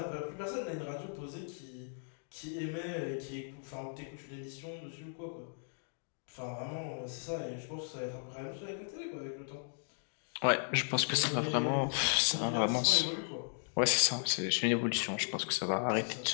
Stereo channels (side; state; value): right; silent; digital silence